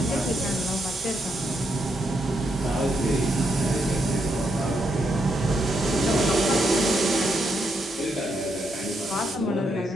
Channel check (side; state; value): both; normal; correlation 0.80